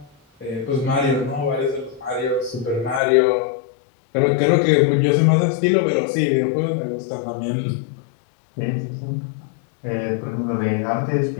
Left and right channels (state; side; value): drops out; right; at 3.0 s